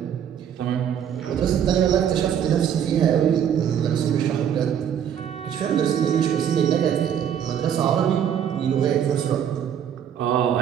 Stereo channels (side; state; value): left; quieter; 9.0 dB